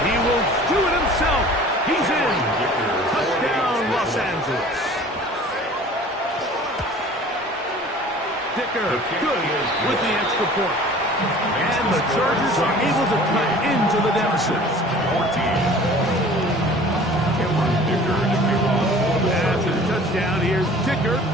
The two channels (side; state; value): both; normal; correlation 0.46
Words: He will do it himself. He's in. Touchdown, Los Angeles. Dicker, good with the extra point. And the Chargers are able to cut into the deficit. 14. After the touchdown, here's Dicker